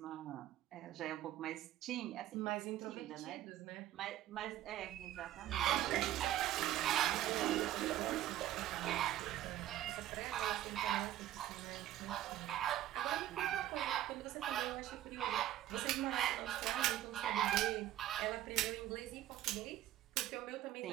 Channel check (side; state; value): left; quieter; 13.2 dB